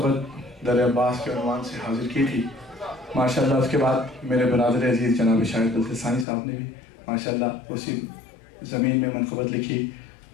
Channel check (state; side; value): drops out; right; at 6.2 s